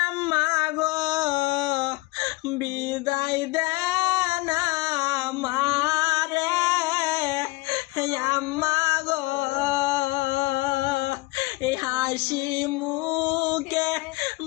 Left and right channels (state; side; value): quieter; right; 21.8 dB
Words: আম্মা গো, বিদায় দেন আমারে আম্মা গো। এই হাসি মুখে